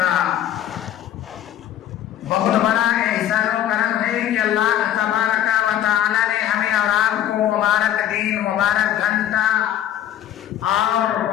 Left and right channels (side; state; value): right; quieter; 11.3 dB